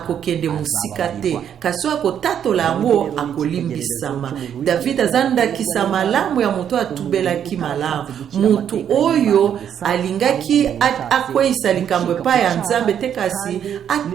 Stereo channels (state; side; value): quieter; left; 9.0 dB